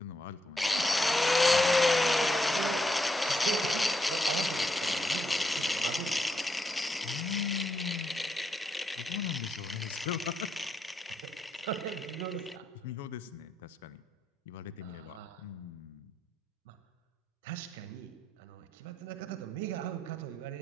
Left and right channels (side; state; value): both; normal; correlation 0.81